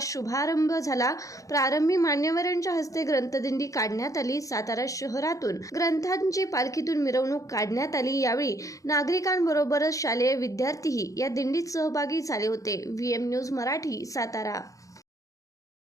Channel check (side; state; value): right; late; 0.16 ms